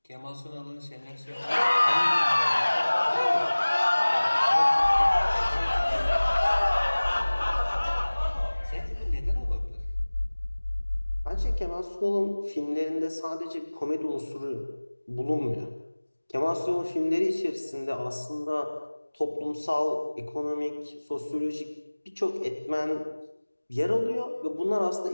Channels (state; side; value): inverted; both; correlation -1.00